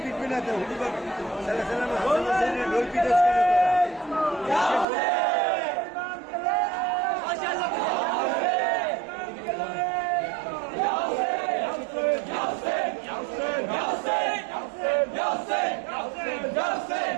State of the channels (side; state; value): left; drops out; at 4.9 s